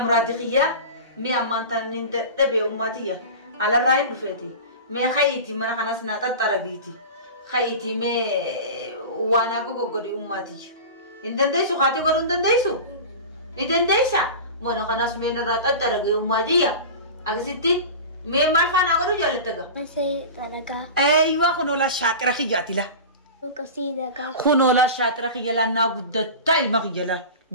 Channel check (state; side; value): inverted; both; correlation -0.31